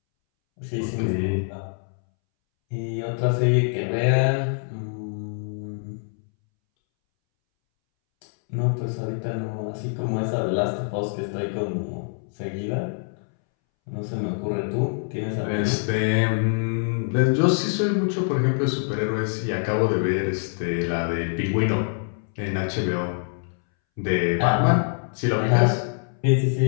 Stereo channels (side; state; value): right; silent; 62 dB below the other